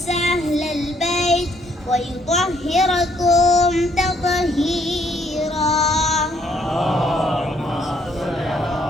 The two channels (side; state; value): both; normal; correlation 0.68